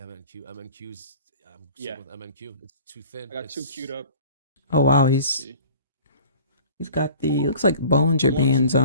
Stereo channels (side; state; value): both; inverted; correlation -0.45